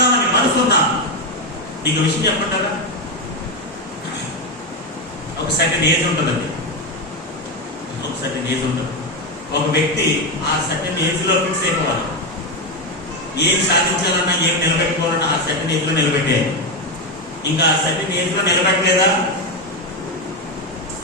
మనసున్నా, నీకు విషయం చెప్పంటారా? ఒక సర్టెన్ ఏజ్ ఉంటుందండి. ఒక సర్టెన్ ఏజ్ ఉంటుంది. ఒక వ్యక్తి ఆ సర్టెన్ ఏజ్ లో ఫిక్స్ అయిపోవాలి. ఏం సాధించాలన్నా, ఏం నిలబెట్టుకోవాలన్నా ఆ సర్టెన్ ఏజ్ లో నిలబెట్టేయాలి. ఇంకా ఆ సర్టెన్ ఏజ్ లో నిలబెట్టలేదా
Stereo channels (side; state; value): both; normal; correlation 0.10